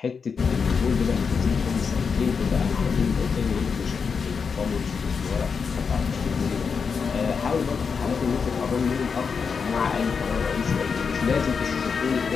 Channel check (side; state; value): right; quieter; 5.7 dB